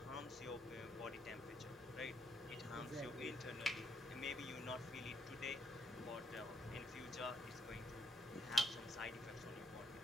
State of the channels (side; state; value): both; normal; correlation 0.73